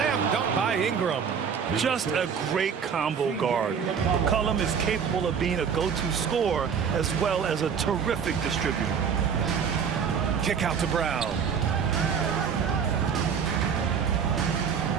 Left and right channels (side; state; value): left; quieter; 6.9 dB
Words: dunk by Ingram. Just a great combo guard. McCollum is capable of being a go-to scorer as well as a terrific distributor. Kick out to Brown.